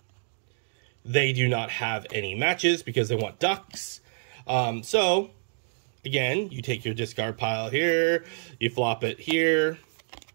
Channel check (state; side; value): silent; left; digital silence